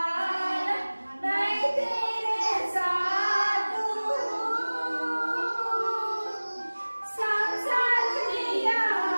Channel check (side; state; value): both; inverted; correlation -1.00